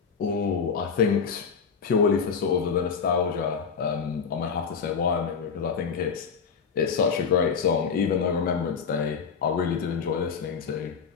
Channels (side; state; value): right; quieter; 6.1 dB